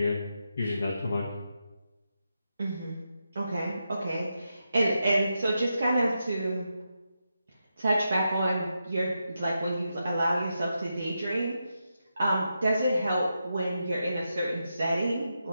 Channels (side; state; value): both; inverted; correlation -0.86